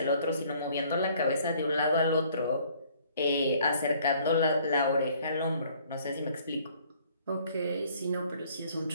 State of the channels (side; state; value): both; inverted; correlation -0.59